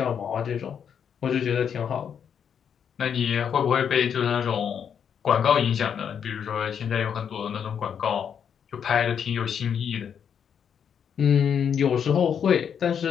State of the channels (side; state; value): right; quieter; 7.8 dB